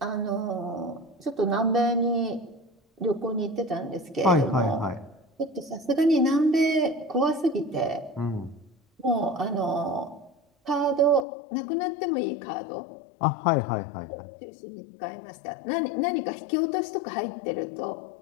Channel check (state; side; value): drops out; right; at 11.2 s